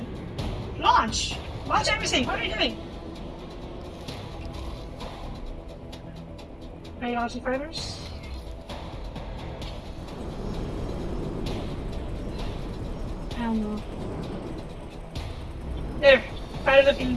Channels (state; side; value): identical; both; correlation 1.00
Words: Launch! Launch everything! What are you doing? Are you launching fighters? I don't know. There! Fighters are being